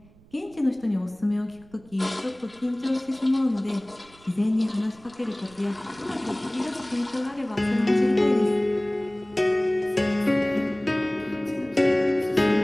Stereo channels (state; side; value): noise; right; rumble, 26 dB below the sound